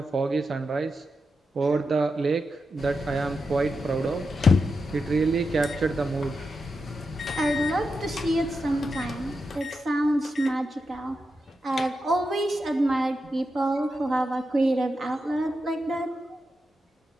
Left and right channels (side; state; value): both; normal; correlation 0.87